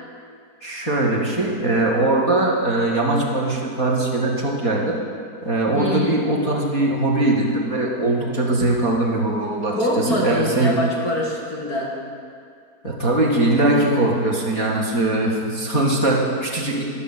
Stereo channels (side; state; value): right; late; 4.2 ms